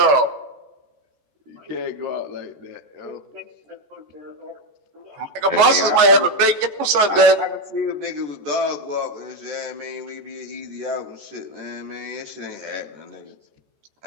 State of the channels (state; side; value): late; left; 14 ms